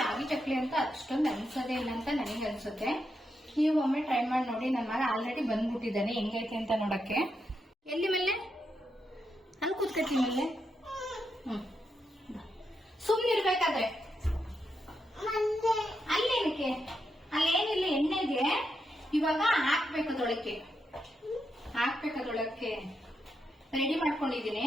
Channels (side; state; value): both; normal; correlation 0.83